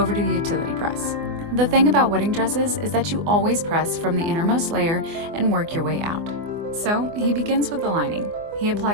to the utility press. The thing about wedding dresses is that you always press from the innermost layer and work your way out. So, he begins with the lining. He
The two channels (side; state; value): left; late; 24 ms